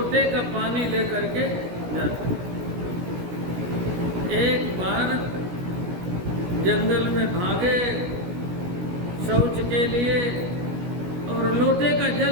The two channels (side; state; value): left; late; 17 ms